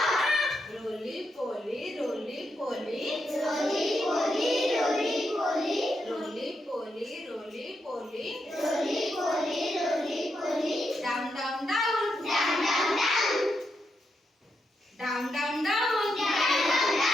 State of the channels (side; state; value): both; normal; correlation 0.83